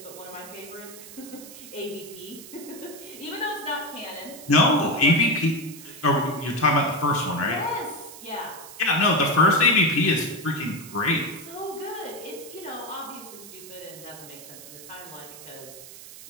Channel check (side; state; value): right; noise; hiss, 16 dB below the sound